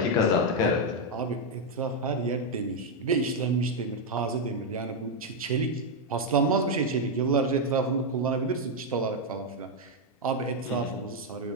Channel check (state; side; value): normal; both; correlation 0.01